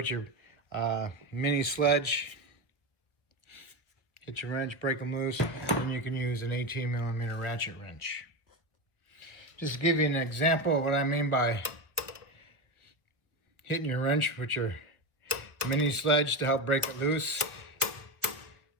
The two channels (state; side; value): late; right; 1.1 ms